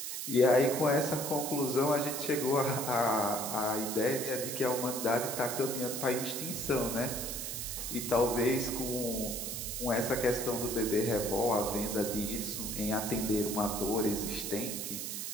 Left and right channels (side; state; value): right; noise; hiss, 4 dB below the sound